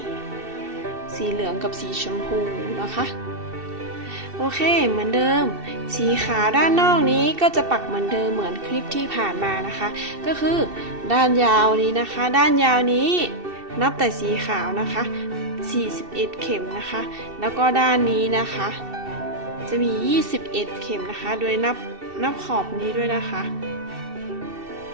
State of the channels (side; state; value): left; late; 2.7 ms